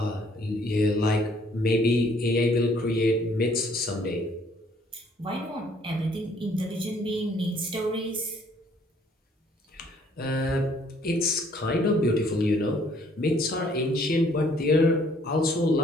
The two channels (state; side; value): normal; both; correlation 0.62